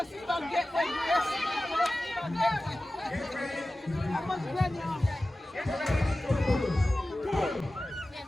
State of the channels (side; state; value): both; normal; correlation 0.95